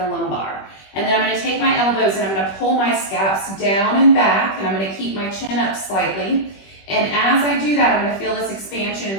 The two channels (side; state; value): right; late; 21 ms